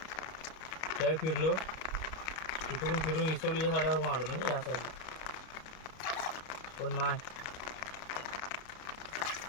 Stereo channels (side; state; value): right; late; 32 ms